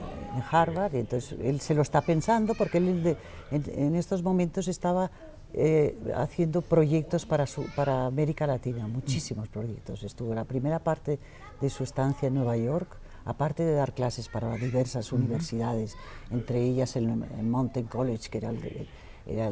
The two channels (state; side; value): identical; both; correlation 1.00